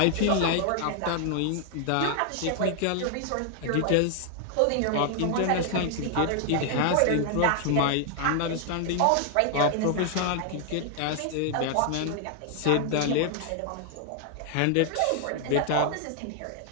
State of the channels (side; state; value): both; different; correlation 0.00